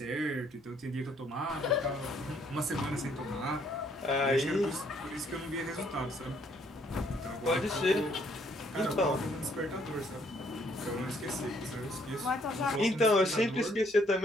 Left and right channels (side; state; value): both; normal; correlation 0.67